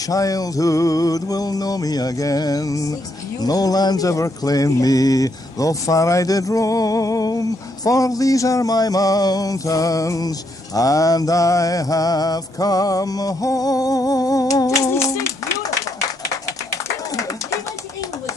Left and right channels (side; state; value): both; normal; correlation 0.76